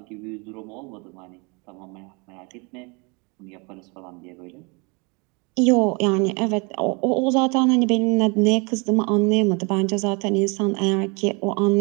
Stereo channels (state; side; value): quieter; left; 30.7 dB